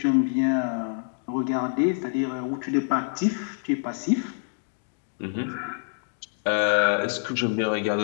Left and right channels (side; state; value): right; silent; digital silence